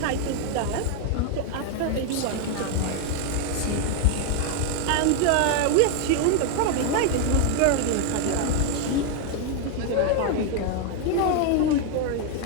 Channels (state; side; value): different; both; correlation 0.01